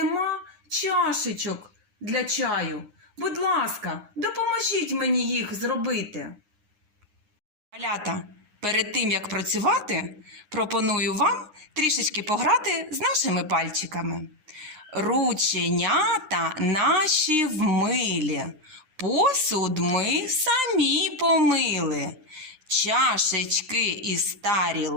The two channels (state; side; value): late; left; 9.7 ms